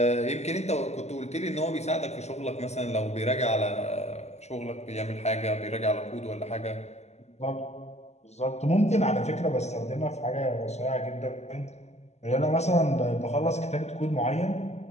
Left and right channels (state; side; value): late; right; 0.32 ms